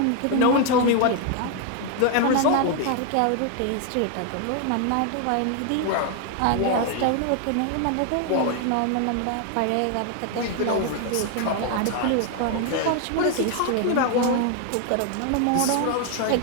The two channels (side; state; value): both; different; correlation 0.00